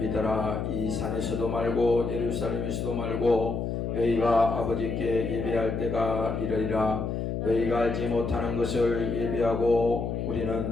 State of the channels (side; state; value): left; noise; hum, 2 dB below the sound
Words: 이 산에서도 말고 예루살렘에서도 말고 너희가 아버지께 예배할 때가 이르리라. 너희가 알지 못하는 것을 예배하고